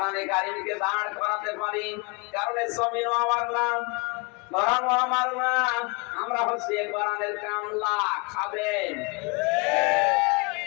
কারিমকে দাঁড় করাতে পারি, কারণ এই জমিনও আমার না, কোরআনও আমার না, আমরা হচ্ছে কোরআনের কামলা, খাবেন।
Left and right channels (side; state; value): right; quieter; 30.5 dB